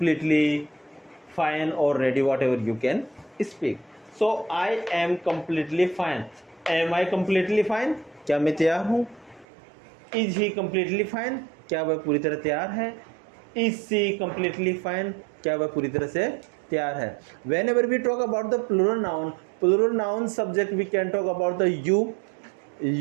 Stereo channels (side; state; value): left; drops out; at 9.5 s